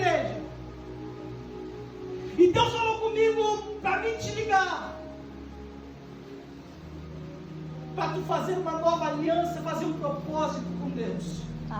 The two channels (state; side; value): identical; both; correlation 1.00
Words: E Deus falou comigo para mim te ligar. Para tu fazer uma nova aliança, fazer um propósito com Deus.